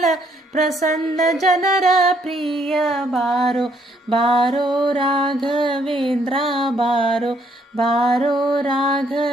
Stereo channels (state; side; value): normal; both; correlation 0.69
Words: ಪ್ರಸನ್ನ ಜನರ ಪ್ರಿಯ ಬಾರೋ ಬಾರೋ ರಾಘವೇಂದ್ರ ಬಾರೋ ಬಾರೋ